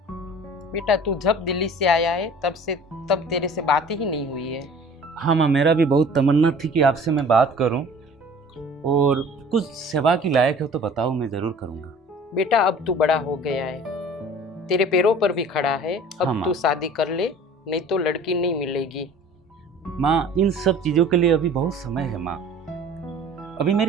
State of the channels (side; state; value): both; normal; correlation 0.46